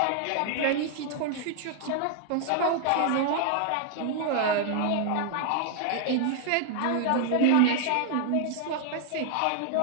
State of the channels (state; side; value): different; both; correlation 0.00